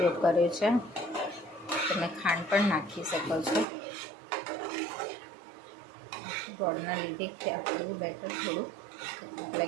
કર્યો છે. તમે ખાંડ પણ નાખી શકો છો. ગોળના લીધે આપણું બેટર થોડું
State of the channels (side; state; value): left; drops out; at 3.7 s